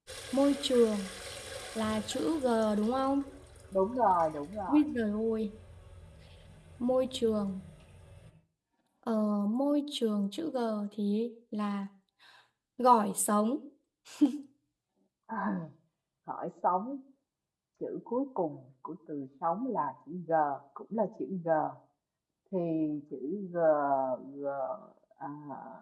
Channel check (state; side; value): identical; both; correlation 1.00